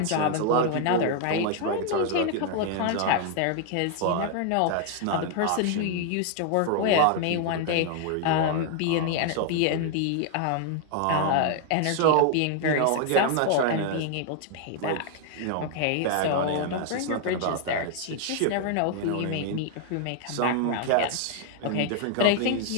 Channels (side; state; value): both; different; correlation 0.00